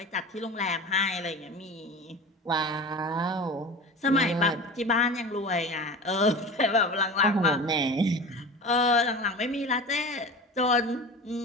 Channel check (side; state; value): both; normal; correlation 0.34